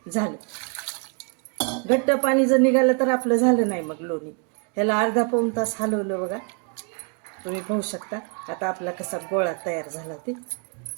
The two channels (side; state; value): left; quieter; 36.7 dB